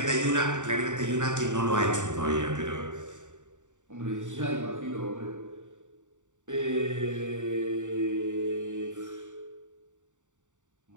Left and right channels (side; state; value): left; late; 0.86 ms